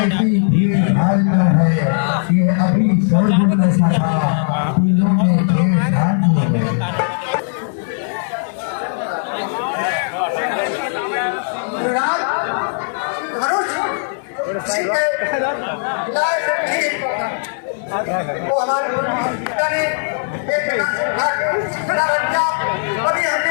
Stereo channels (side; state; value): right; silent; digital silence